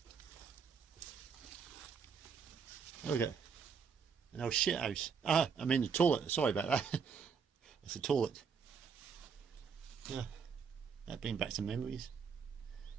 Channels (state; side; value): quieter; left; 6.2 dB